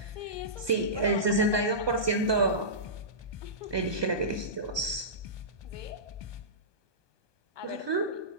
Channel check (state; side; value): late; left; 1.2 ms